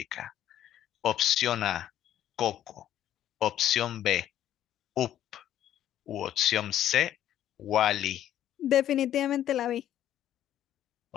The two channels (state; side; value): quieter; right; 11.5 dB